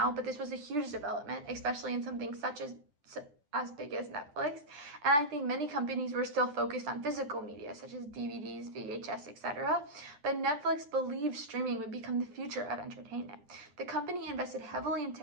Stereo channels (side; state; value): left; late; 10 ms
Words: but this was a huge development, especially in something such as big as Netflix. And I think many companies were still focused on physical media such as DVDs, VHS, etc. But Netflix believed streaming would become the future of entertainment. The company invested heavily in